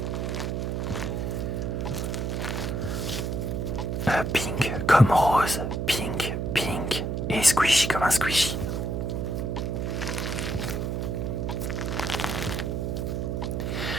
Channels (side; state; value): right; noise; hum, 1 dB below the sound